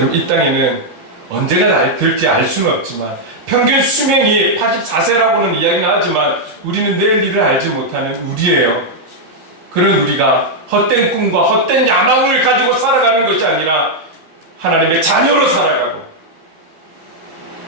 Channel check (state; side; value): late; left; 13 ms